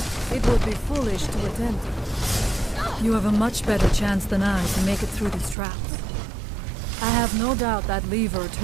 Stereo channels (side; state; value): left; drops out; at 5.6 s